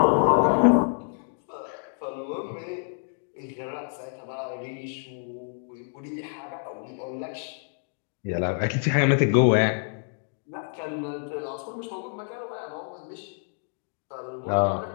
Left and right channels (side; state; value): right; silent; 60 dB below the other